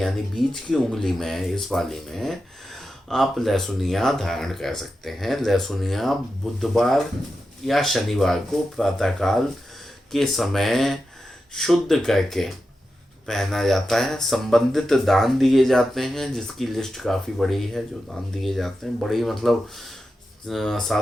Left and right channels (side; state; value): both; normal; correlation 0.90